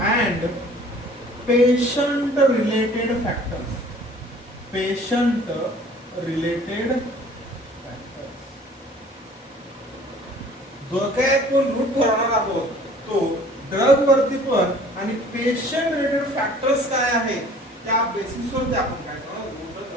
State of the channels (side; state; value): both; normal; correlation 0.51